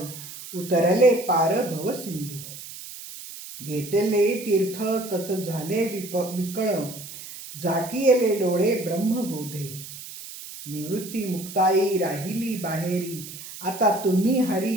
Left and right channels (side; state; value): right; noise; hiss, 13 dB below the sound